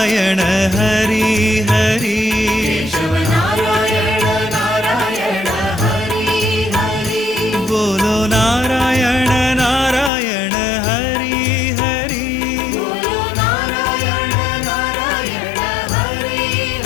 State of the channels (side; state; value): right; drops out; at 10.1 s